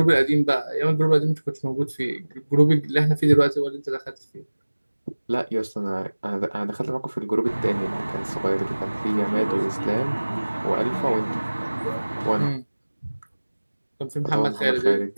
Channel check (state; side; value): inverted; both; correlation -1.00